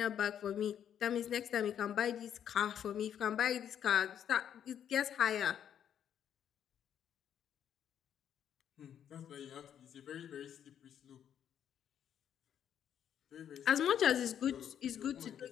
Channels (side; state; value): right; quieter; 9.3 dB